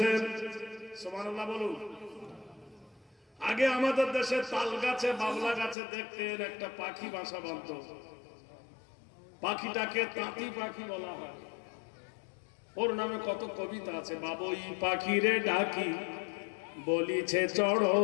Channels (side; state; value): right; drops out; at 5.8 s